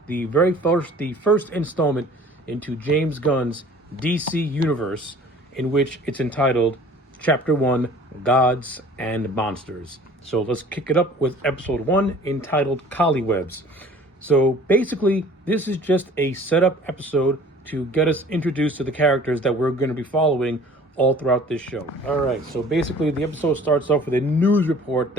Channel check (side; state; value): both; normal; correlation 0.49